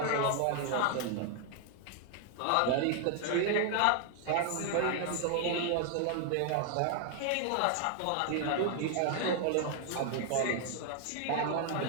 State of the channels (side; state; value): both; different; correlation 0.00